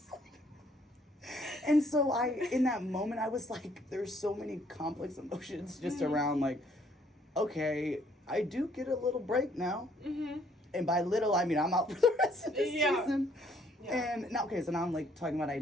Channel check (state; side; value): normal; both; correlation 0.64